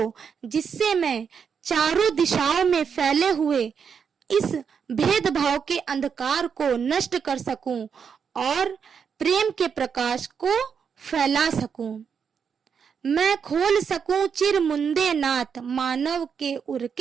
जिससे मैं चारों दिशाओं में फैले हुए इस भेदभाव के अंधकार को नष्ट कर सकूं और प्रेम के प्रकाश को फैला सकूं। मैं खोल सकूं चिर मुंदे नाथ, मानव के उर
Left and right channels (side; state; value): left; quieter; 6.7 dB